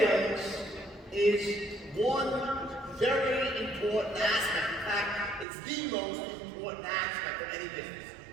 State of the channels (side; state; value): left; drops out; at 5.5 s